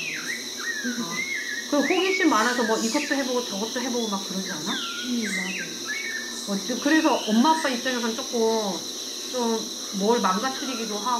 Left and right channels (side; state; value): both; identical; correlation 1.00